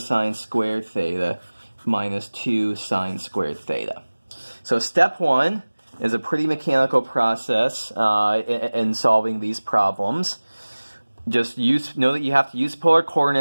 squared theta minus 2 sine squared theta. So step 1 is a pretty mechanical process in solving these problems. Just know that you have to use polar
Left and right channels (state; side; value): inverted; both; correlation -1.00